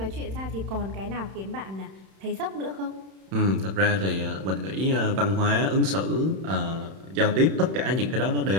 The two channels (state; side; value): late; left; 31 ms